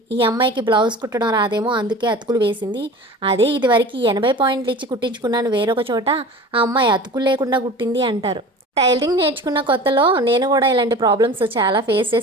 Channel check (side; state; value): both; normal; correlation 0.38